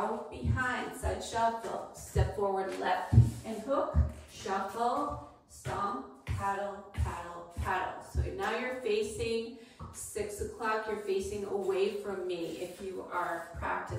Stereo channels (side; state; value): both; identical; correlation 1.00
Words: behind, side shuffle, step forward, left, and hook, shuffle, stomp, paddle, paddle, paddle. So now you're facing 6 o'clock, you're facing away from me if you are